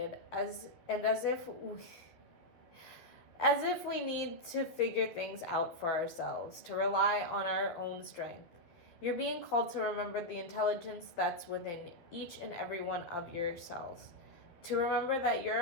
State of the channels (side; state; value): right; late; 11 ms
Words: as if we need to figure things out for ourselves, to rely on our own strength. You're being called to remember the intelligence that's within each and every one of your cells. To remember that you're